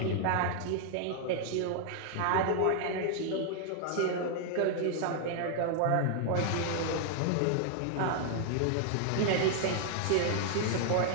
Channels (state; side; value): different; both; correlation 0.00